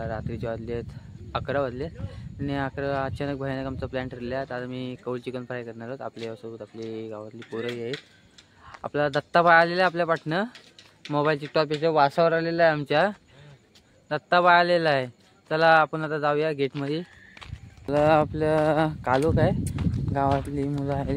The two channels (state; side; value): identical; both; correlation 1.00